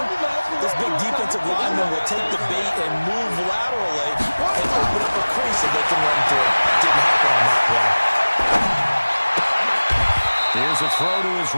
this big defensive lineman will take the bait and move laterally and open up a crease that they can run through. Didn't happen on that play. Here's a throw to his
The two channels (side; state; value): both; inverted; correlation -1.00